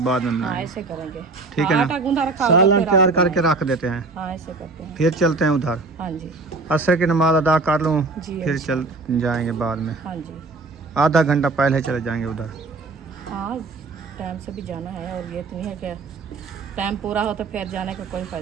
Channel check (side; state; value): left; quieter; 3.7 dB